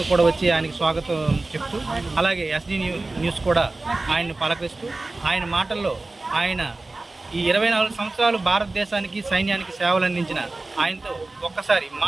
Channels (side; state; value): left; quieter; 3.2 dB